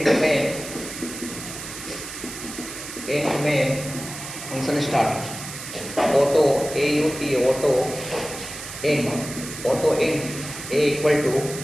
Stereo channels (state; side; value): noise; right; hiss, 10 dB below the sound